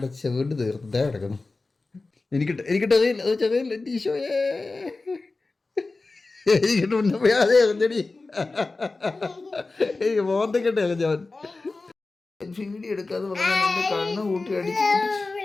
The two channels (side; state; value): right; quieter; 3.5 dB